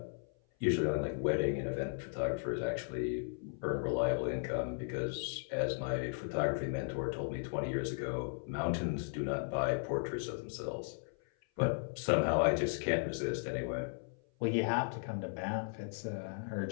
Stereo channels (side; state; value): right; silent; 54 dB below the other